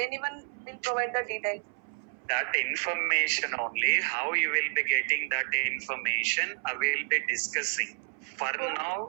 anyone will provide the details. That information only, how you will be getting that information, I will be discussing. For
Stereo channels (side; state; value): left; silent; 58 dB below the other